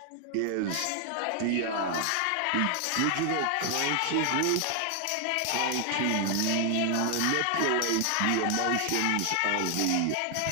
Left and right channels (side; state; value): both; different; correlation 0.00